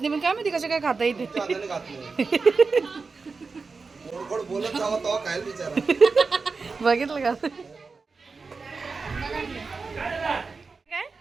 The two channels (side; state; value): left; quieter; 4.5 dB